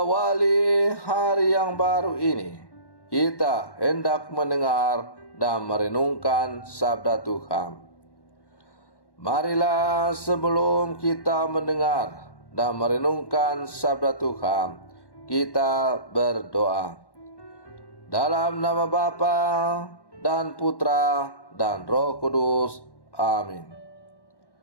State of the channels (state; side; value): late; right; 1.1 ms